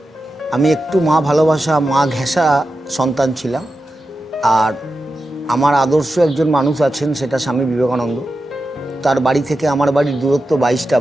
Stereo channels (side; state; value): both; normal; correlation 0.91